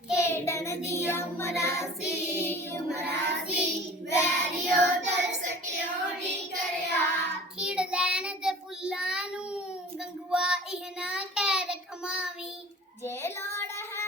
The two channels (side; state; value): both; normal; correlation 0.43